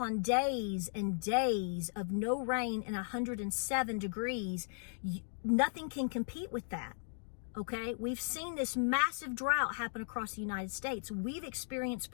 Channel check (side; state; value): right; silent; digital silence